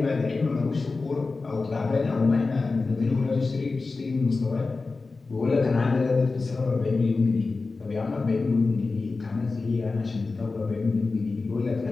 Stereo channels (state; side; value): quieter; right; 3.9 dB